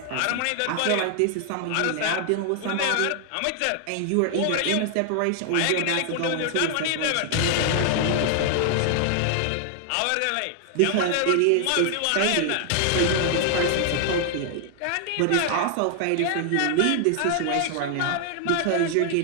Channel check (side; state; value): both; different; correlation 0.00